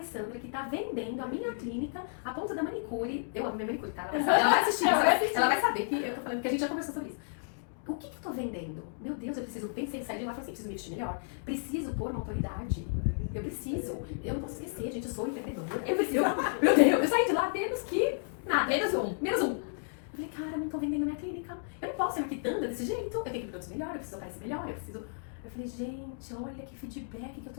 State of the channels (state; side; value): silent; right; digital silence